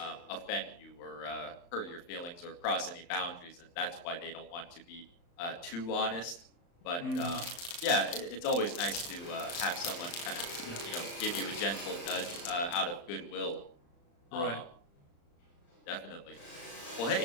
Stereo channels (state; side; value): late; right; 35 ms